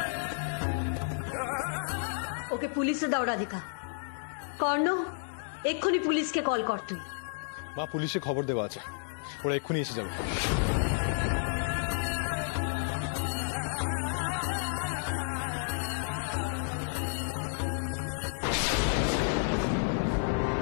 ওকে পুলিশে দাও রাধিকা। কর্ণ এক্ষুনি পুলিশকে কল কর তুই। মা পুলিশে খবর দেওয়া আছে, ওরা এক্ষুনি এসে যাবে।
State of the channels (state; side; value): silent; right; digital silence